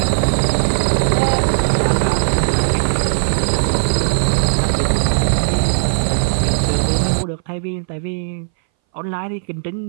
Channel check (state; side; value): silent; left; 62 dB below the other